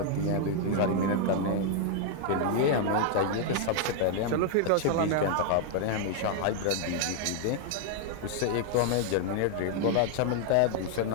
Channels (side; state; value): both; different; correlation 0.00